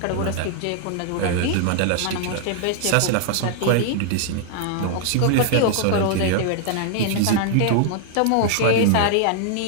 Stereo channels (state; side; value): different; both; correlation -0.01